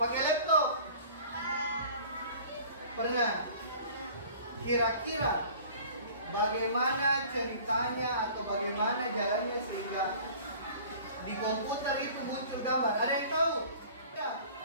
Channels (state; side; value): inverted; both; correlation -0.46